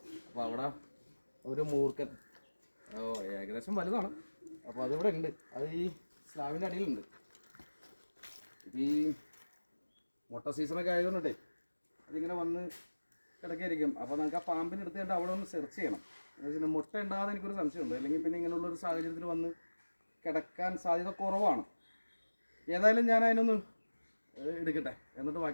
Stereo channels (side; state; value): both; inverted; correlation -1.00